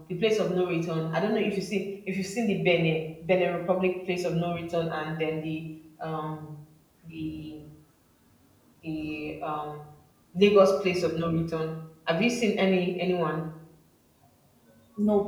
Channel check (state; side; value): identical; both; correlation 1.00